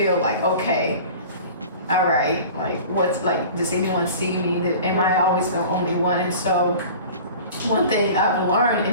like, okay, all right, like, what's, like, does anyone see me? Am I always the only one? And so one thing I've learned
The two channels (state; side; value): inverted; both; correlation -0.41